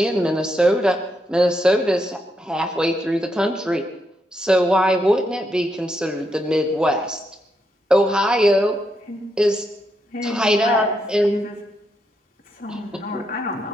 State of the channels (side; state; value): both; normal; correlation 0.80